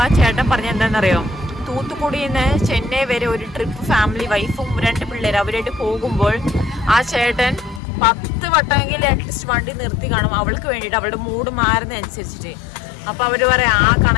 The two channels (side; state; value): right; drops out; at 7.8 s